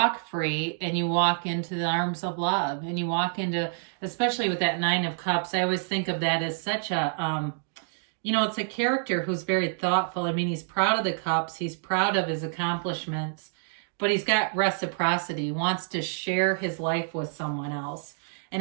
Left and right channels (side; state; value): left; silent; digital silence